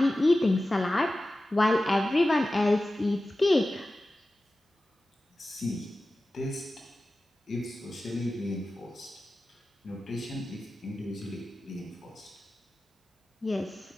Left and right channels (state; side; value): normal; both; correlation 0.95